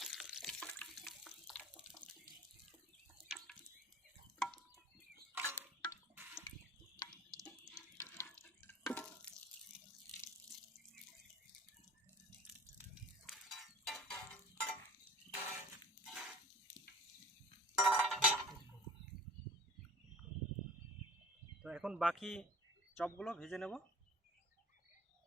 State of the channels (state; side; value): normal; both; correlation 0.43